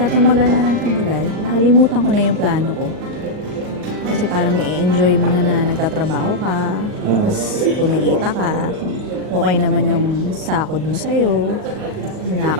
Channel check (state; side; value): late; left; 39 ms